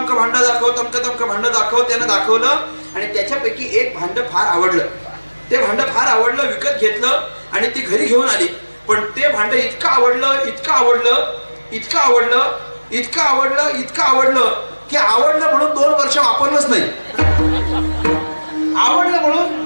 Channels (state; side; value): inverted; both; correlation -1.00